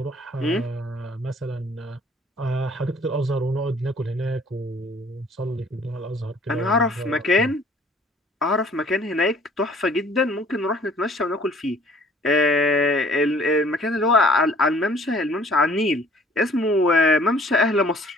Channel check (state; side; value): normal; both; correlation 0.55